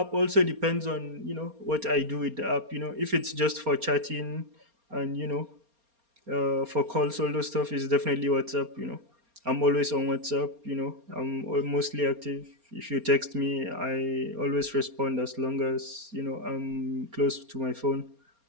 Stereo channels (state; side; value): late; left; 4.3 ms